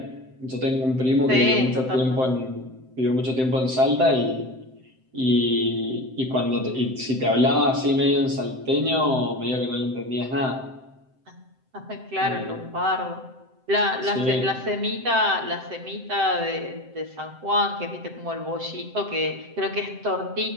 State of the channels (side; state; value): left; late; 7.7 ms